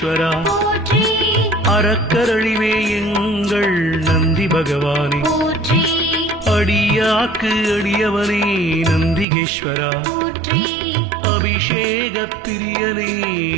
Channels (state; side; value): drops out; left; at 9.2 s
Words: போற்றி அறக்கரழிவே எங்கள் நந்தி பகவானே போற்றி அடியாக்கு அடியவனே நந்திகேஸ்வரா போற்றி அபிஷேக பிரியனே